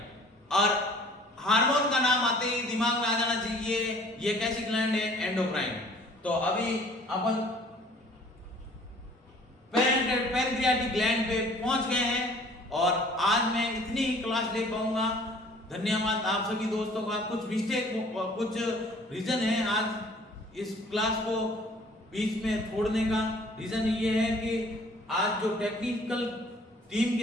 और हार्मोन का नाम आते ही दिमाग में आ जाना चाहिए ये कैसी ग्लैंड है, एंडोक्राइन। तो अभी अपन पैनक्रियाटिक ग्लैंड पे पहुंच गए हैं और आज मैं इतनी ही क्लास ले पाऊंगा। धन्यवाद आप सभी दोस्तों का। कुछ मिस्टेक, कुछ रीजन है आज इस क्लास को बीच में छोड़ने का। रीजन ये है कि आज जो टेक्निकल टीम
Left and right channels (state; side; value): normal; both; correlation 0.53